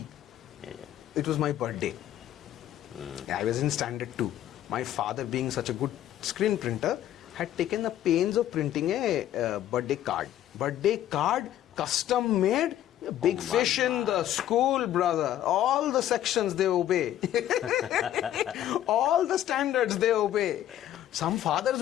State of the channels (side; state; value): right; quieter; 12.1 dB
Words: It was my birthday. I was in standard 2. My father, being such a good screen printer, had taken the pains of printing a birthday card. Birthday card, custom made, big fish in the school, brother. All the sections they obey. All the standards they obey. Some